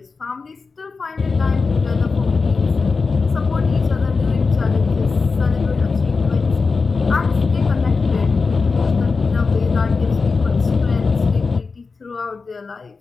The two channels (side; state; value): right; quieter; 4.5 dB